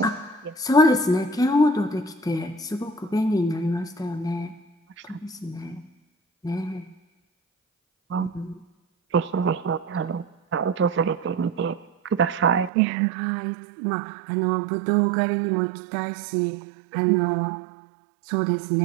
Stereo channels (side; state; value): left; drops out; at 12.7 s